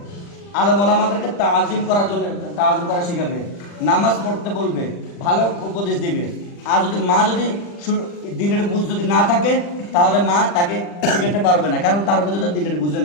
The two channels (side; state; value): right; late; 40 ms